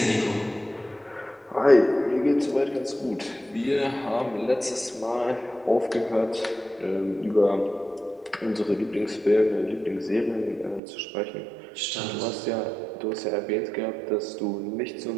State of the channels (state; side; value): drops out; left; at 10.8 s